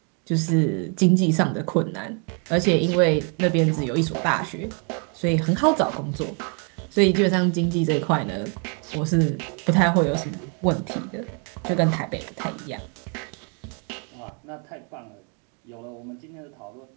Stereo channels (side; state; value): left; quieter; 37.9 dB